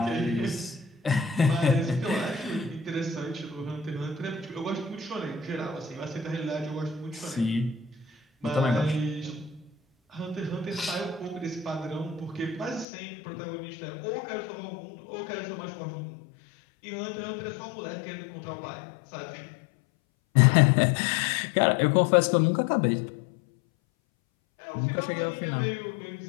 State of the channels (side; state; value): right; drops out; at 12.9 s